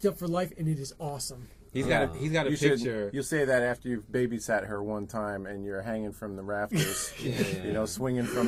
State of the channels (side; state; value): both; identical; correlation 1.00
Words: up for life, and it is awesome. He's got a picture. You'll say that after you've babysat her one time and you're hanging from the rafters, you know, swinging